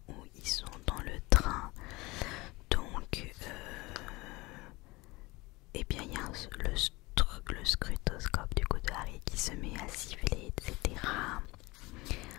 où ils sont dans le train, donc et bien il y a le scrutoscope du coup de Harry qui se met à siffler, etc.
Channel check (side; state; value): right; quieter; 22.5 dB